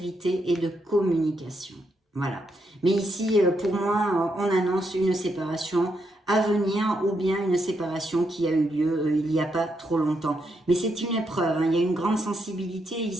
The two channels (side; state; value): both; normal; correlation 0.80